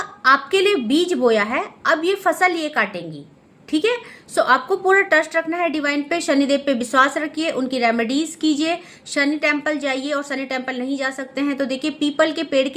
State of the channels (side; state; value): both; identical; correlation 1.00